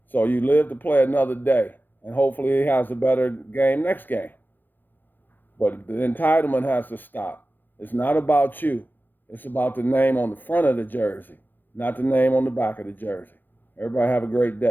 So you live to play another day, and hopefully he has a better game next game. But the entitlement has to stop. It's not about you. It's about the name on the front of the jersey, not the name on the back of the jersey. Everybody have a great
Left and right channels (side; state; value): right; late; 0.089 ms